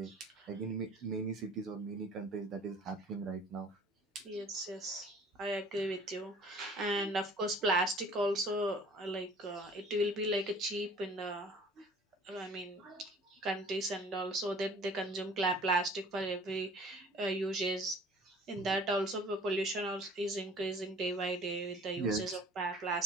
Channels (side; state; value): both; normal; correlation 0.50